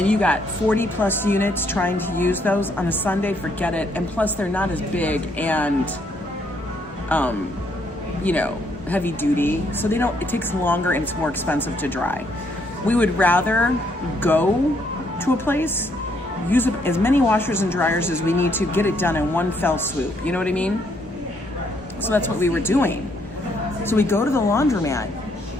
you got 40 plus units trying to use those on a Sunday. Forget it. And plus they're not as big and heavy duty, so it takes longer and it's more expensive to dry. We would rather go to a place, use as many washers and dryers as we need to, get it done in one fell swoop. You know what I mean? So that's what we were doing. So we go to the laundromat.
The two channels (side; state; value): both; normal; correlation 0.71